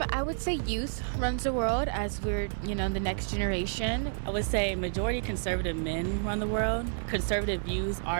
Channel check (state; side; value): silent; left; 58 dB below the other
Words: I would say youth runs the world as we're, the next generation. I would say majority conservative men run the world. Conservative views